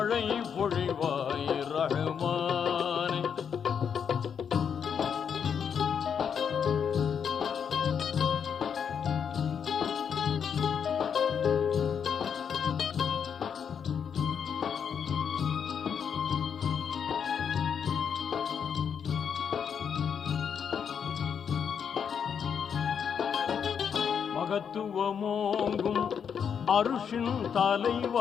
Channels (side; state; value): right; quieter; 7.3 dB